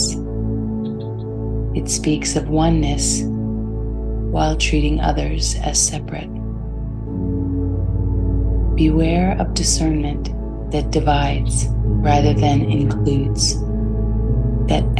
It speaks of oneness while treating others as separate. Beware of discernment that divides rather than includes, that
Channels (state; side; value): identical; both; correlation 1.00